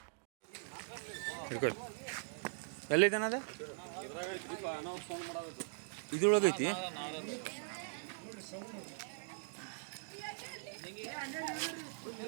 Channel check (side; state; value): left; silent; digital silence